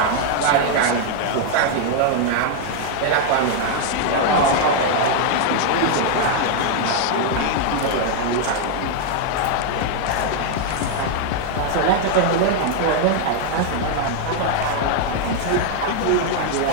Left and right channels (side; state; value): both; different; correlation 0.00